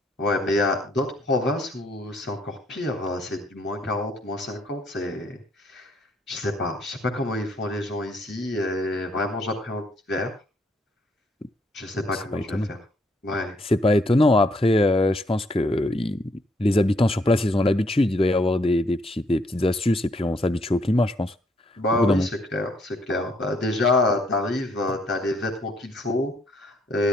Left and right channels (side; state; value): both; normal; correlation 0.69